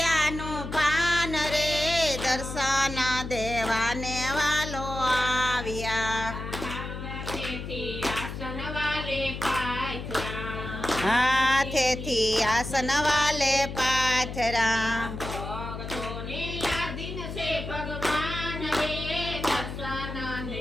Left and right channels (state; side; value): noise; left; hum, 7 dB below the sound